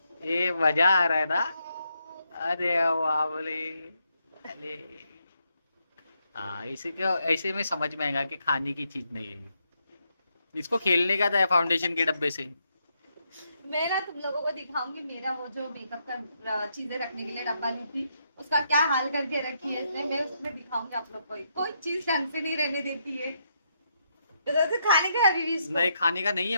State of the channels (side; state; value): both; inverted; correlation -0.79